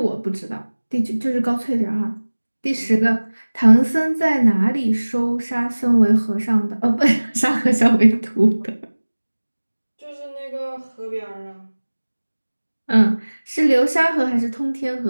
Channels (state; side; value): inverted; both; correlation -1.00